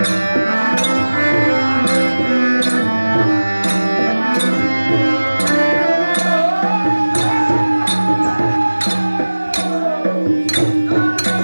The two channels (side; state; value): both; inverted; correlation -1.00